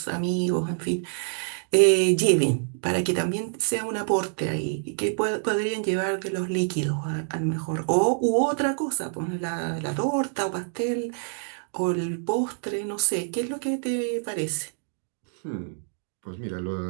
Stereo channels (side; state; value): left; silent; digital silence